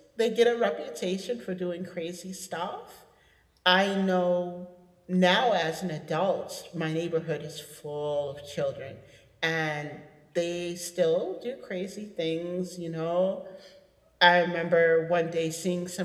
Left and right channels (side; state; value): both; identical; correlation 1.00